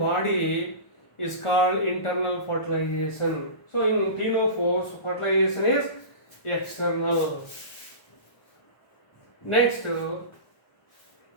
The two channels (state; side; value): late; right; 1.1 ms